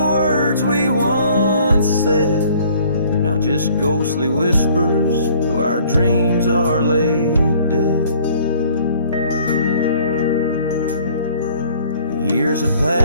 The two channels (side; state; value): both; inverted; correlation -0.57